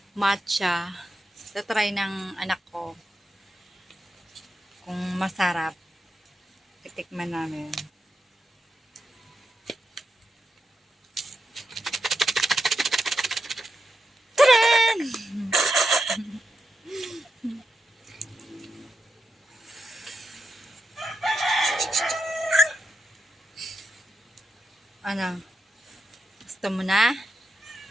matcha. Tatry ng anak ko. Kung masarap, titikman namin. Ano? Gusto mo na?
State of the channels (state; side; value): normal; both; correlation 0.87